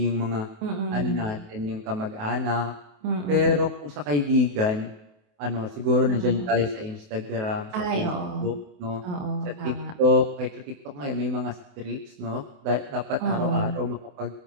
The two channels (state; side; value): late; left; 28 ms